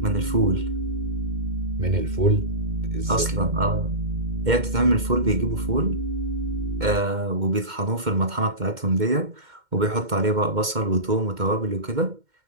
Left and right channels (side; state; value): left; late; 2.1 ms